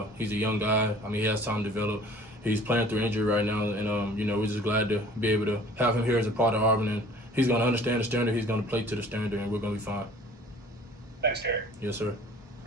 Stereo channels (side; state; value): both; normal; correlation 0.50